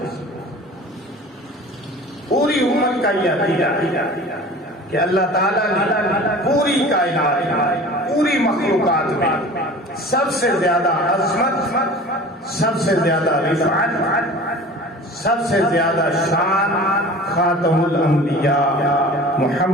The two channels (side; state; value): both; normal; correlation 0.41